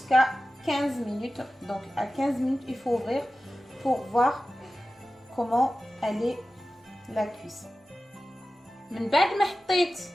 15 minutes. Donc à 15 minutes il faut ouvrir pour voir comment elle est la cuisson. من بعد ما حطيت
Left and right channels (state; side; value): normal; both; correlation 0.95